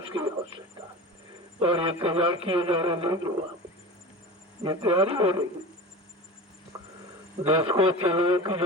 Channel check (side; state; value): both; normal; correlation 0.32